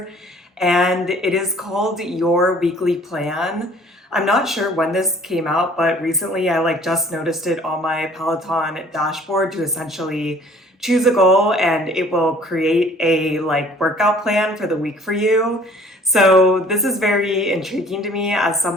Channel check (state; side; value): normal; both; correlation 0.54